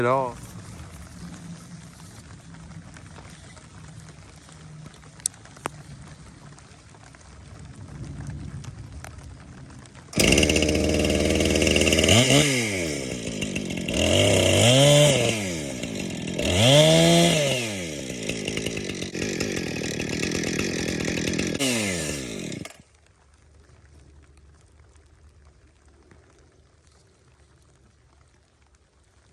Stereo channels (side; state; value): both; identical; correlation 1.00